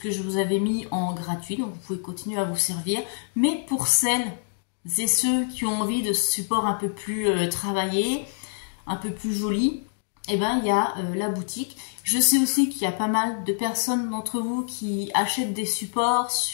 je vous avais mis en gratuit, donc vous pouvez continuer à vous servir. Mais pour celles et ceux qui ont envie de ce support un peu plus travaillé, un peu plus joli, et il y a la boutique. Je sais aussi qu'il y a pas mal de personnes d'entre vous qui achètent des supports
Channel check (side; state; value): right; silent; digital silence